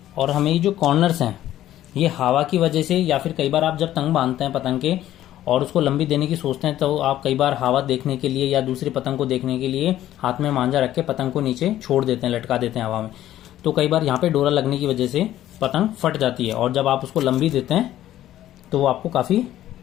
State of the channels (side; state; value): right; quieter; 13.1 dB